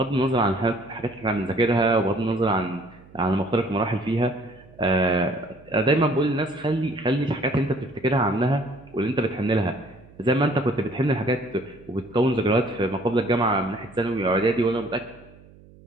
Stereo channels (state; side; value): noise; right; hum, 24 dB below the sound